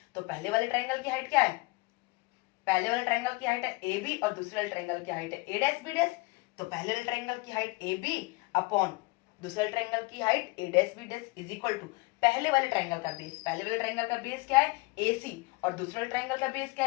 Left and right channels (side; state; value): right; quieter; 24.3 dB